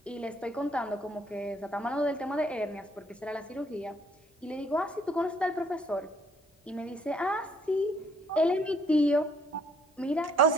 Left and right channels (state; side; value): normal; both; correlation 0.61